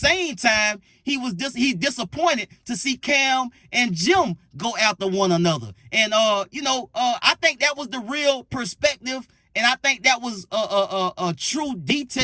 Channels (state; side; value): identical; both; correlation 1.00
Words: time, he's disappointed to see Cam and Jim go after one another. And I think that was the real perspective, and I think that was a true,